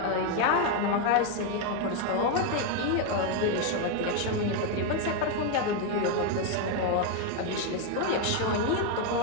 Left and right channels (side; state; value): both; different; correlation 0.01